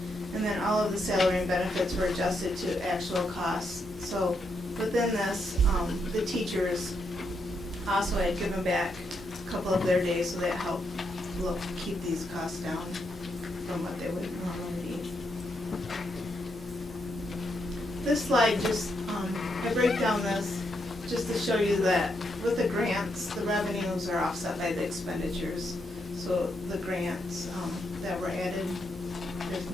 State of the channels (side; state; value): both; normal; correlation 0.80